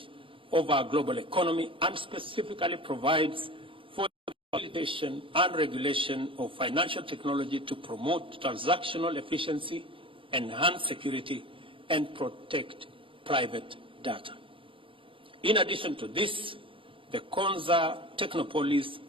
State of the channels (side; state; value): left; late; 0.25 ms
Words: of our global economy, and specifically provides for the facilitation and regulation of financial technology to promote transactional efficiency, enhance security, and protect private data. In addition to this, the Konza Technopolis,